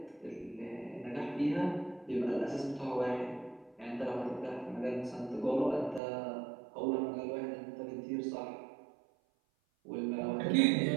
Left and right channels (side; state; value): left; drops out; at 6.0 s